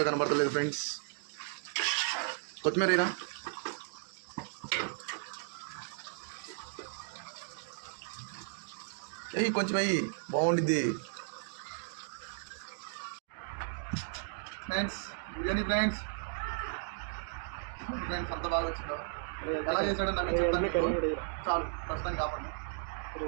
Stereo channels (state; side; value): silent; left; digital silence